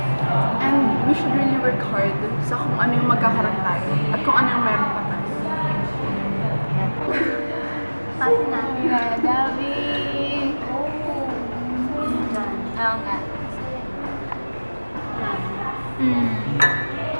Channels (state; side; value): inverted; both; correlation -1.00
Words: And we should really work hard sa kung ano yung magkakaroon tayo at kung ano yung meron pa tayo. Kasi na. Kaya, Gabi. Oo nga.